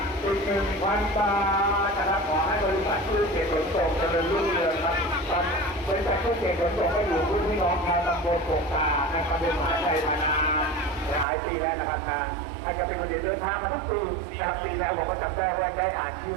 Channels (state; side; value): drops out; left; at 11.2 s